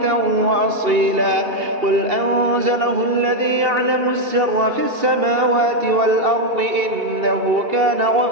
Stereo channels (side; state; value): left; late; 2.7 ms